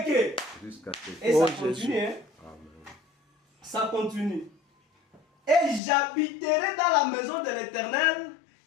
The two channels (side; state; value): right; drops out; at 5.8 s